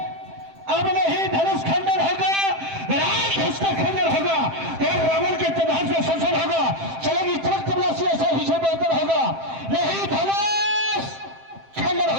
अब नहीं धनुष खंडन होगा, राम उसका खंडन होगा, और रावण के प्रभाव से संसद होगा, चलेगी चमक तबलासी, ऐसा हिस्सा बेहतर होगा, नहीं धनुष खंडन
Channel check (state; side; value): late; left; 7.6 ms